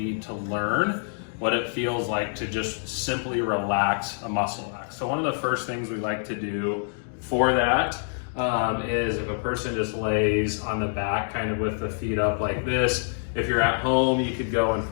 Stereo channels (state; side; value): silent; right; digital silence